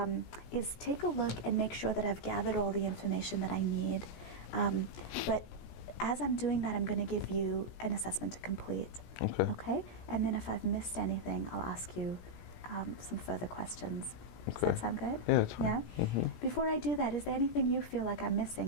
is take a look and make sure that I've gathered all the information that I need. But as I'm doing that, I'm going to give you an assessment to complete. Okay. Okay? And then if I've missed anything, I'll ask you some further questions. Does Okay. that sound good? Yeah, it's fine. Yeah? Hmm. Before I do that, is there anything you feel like I'm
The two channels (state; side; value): late; right; 17 ms